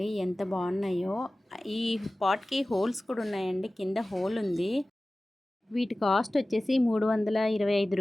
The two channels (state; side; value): normal; both; correlation 0.97